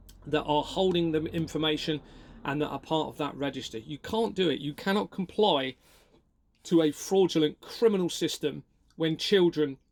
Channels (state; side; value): identical; both; correlation 1.00